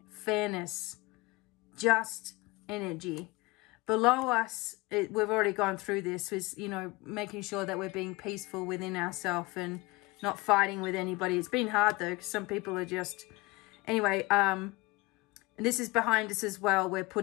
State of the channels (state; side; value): quieter; right; 23.1 dB